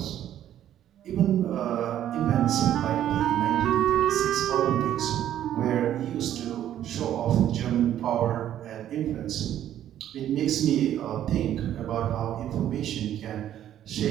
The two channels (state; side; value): quieter; left; 11.3 dB